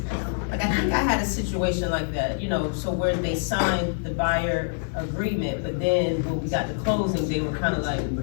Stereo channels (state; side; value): silent; right; digital silence